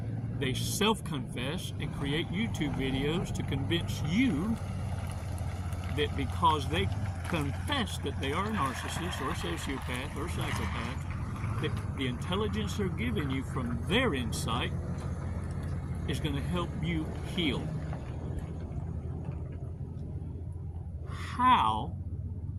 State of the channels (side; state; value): both; identical; correlation 1.00